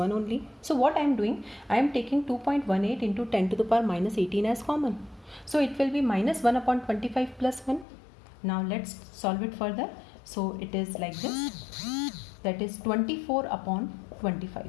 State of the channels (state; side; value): drops out; right; at 7.9 s